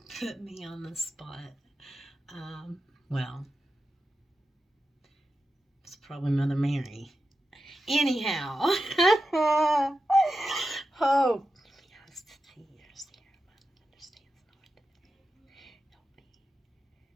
put me on the spot. Well, it's probably Mother Mary. Anyhow. Oh.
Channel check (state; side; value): normal; both; correlation 0.90